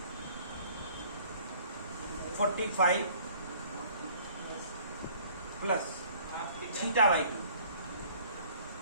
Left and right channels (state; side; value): inverted; both; correlation -0.55